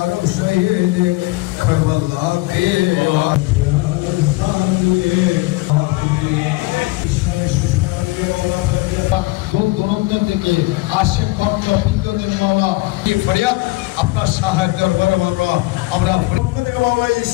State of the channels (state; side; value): quieter; right; 21.0 dB